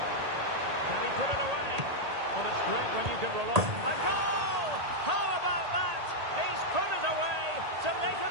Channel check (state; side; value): late; left; 1.8 ms